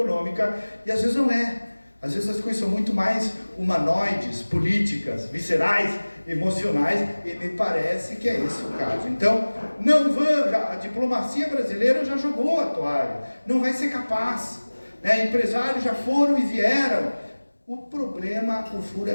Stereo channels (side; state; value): both; inverted; correlation -1.00